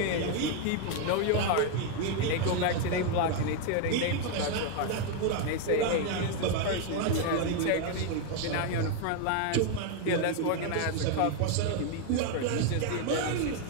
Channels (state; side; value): different; both; correlation 0.01